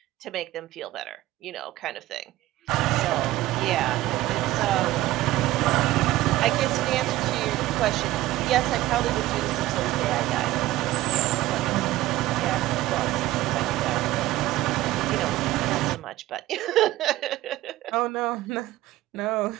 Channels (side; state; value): left; quieter; 16.2 dB